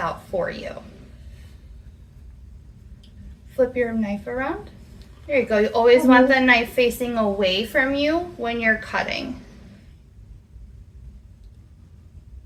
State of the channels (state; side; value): identical; both; correlation 1.00